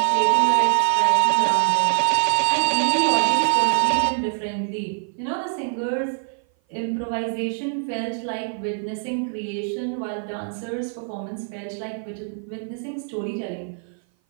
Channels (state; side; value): silent; left; 57 dB below the other